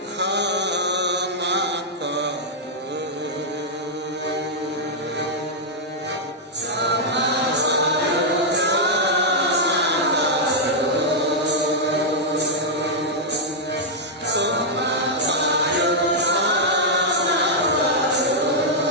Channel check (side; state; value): both; normal; correlation -0.05